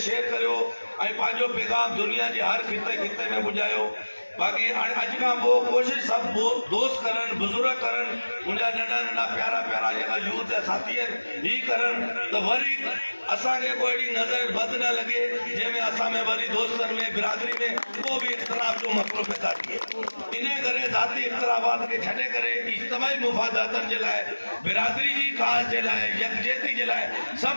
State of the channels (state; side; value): inverted; both; correlation -1.00